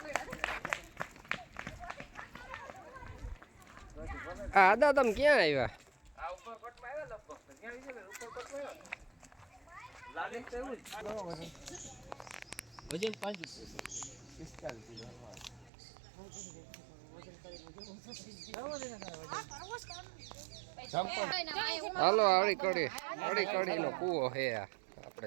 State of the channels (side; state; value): left; drops out; at 15.7 s